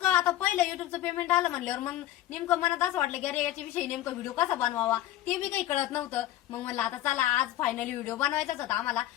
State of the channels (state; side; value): quieter; right; 14.0 dB